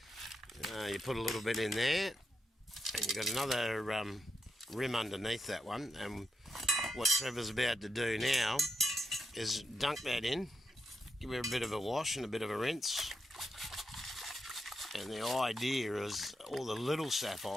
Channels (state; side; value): normal; both; correlation 0.82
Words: You put a little bit in there, and you've got another rim underneath that one. And what Trevor's about to do now is dunk that in, give it a bit of a wash and a bit of a rinse. And the idea is all the little